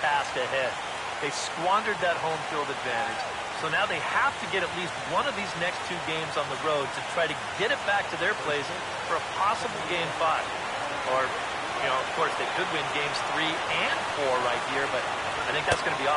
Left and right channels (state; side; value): identical; both; correlation 1.00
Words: ahead. They squandered that home field advantage. So now they have to get at least one of these next two games on the road to try to get it back to their place for a possible Game 5. Or, you know, of course, they could win Games 3 and 4 right here, but I think that's going to be